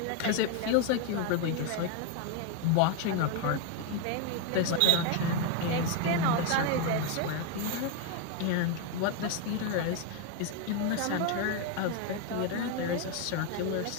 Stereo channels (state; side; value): different; both; correlation 0.01